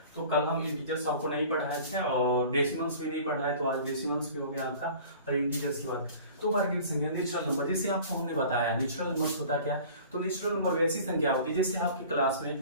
तो कल हम इंटीजर्स आपको नहीं पढ़ाए थे और डेसिमल्स भी नहीं पढ़ाए, तो आज डेसिमल्स भी हो गया आपका और इंटीजर्स की बात। तो वर्गीकृत संख्या नेचुरल नंबर, जैसे आपको हमने बताया नेचुरल नंबर होता क्या। तो नेचुरल नंबर वैसी संख्या होती है जैसे आपके क्लास में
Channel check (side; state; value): both; inverted; correlation -0.45